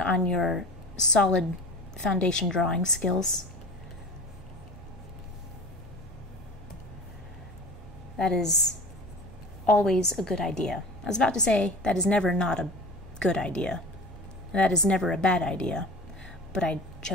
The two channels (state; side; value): normal; both; correlation 0.37